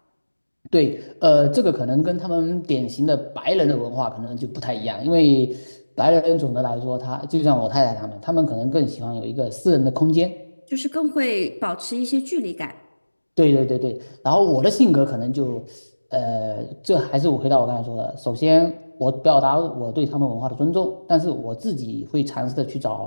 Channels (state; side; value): inverted; both; correlation -1.00